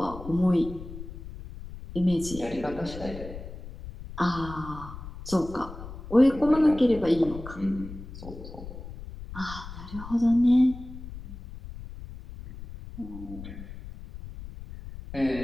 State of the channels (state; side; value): noise; left; rumble, 12 dB below the sound